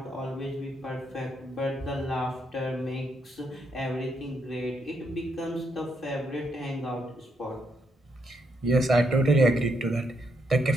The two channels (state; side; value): normal; both; correlation 0.77